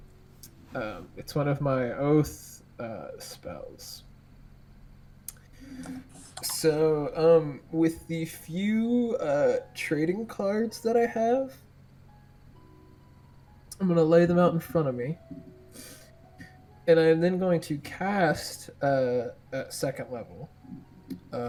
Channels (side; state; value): both; identical; correlation 1.00